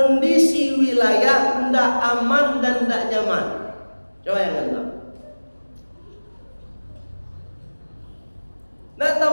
wilayah tidak aman dan tidak nyaman. Coba yang tahu. Nah,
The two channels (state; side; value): inverted; both; correlation -1.00